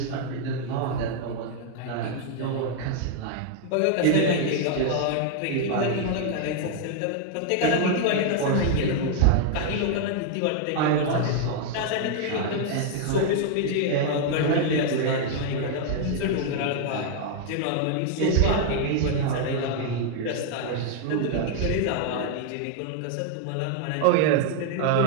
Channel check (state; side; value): different; both; correlation 0.00